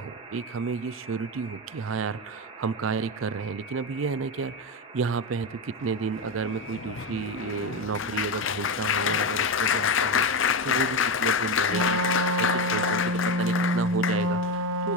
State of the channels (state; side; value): normal; both; correlation 0.15